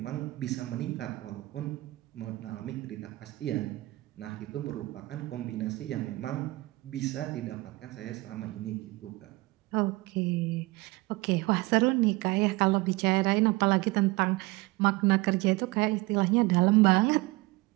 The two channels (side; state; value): left; quieter; 21.5 dB